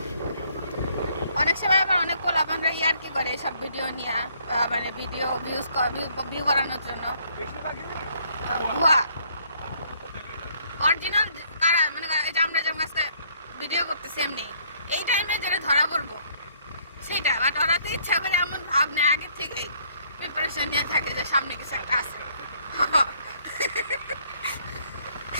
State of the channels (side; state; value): both; inverted; correlation -0.64